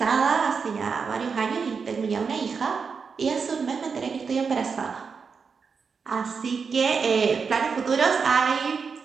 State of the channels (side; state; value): left; quieter; 5.6 dB